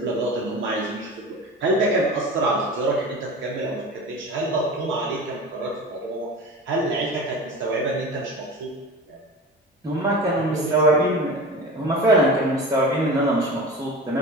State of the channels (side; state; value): both; normal; correlation 0.33